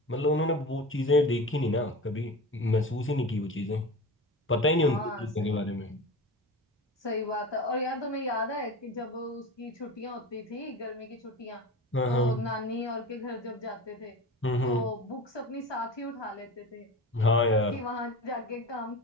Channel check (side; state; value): both; normal; correlation 0.31